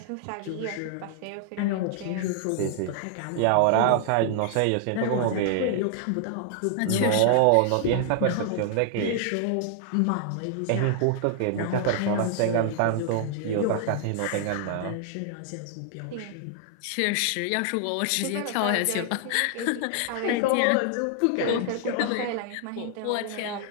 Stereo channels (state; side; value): different; both; correlation -0.01